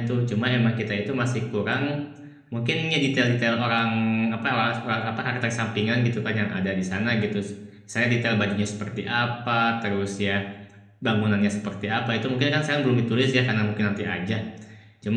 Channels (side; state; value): both; identical; correlation 1.00